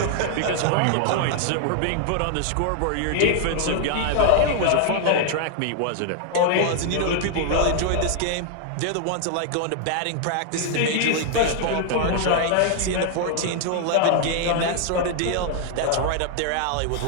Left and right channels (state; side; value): different; both; correlation 0.00